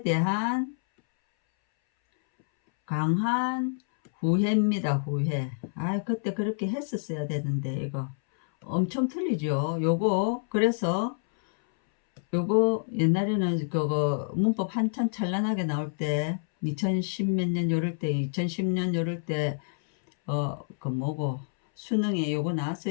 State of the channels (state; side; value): silent; right; 60 dB below the other